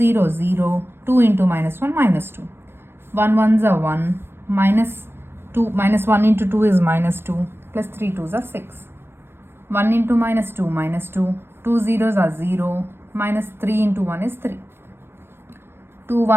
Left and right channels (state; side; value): late; left; 0.11 ms